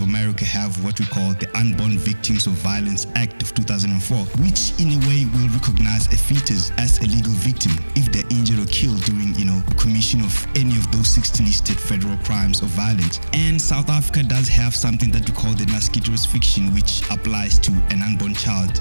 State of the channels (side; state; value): both; inverted; correlation -1.00